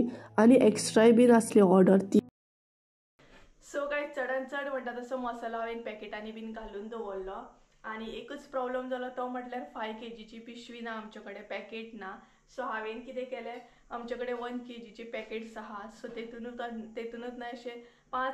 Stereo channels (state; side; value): identical; both; correlation 1.00